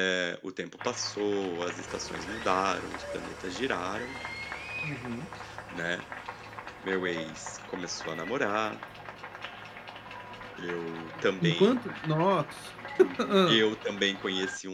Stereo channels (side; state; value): both; identical; correlation 1.00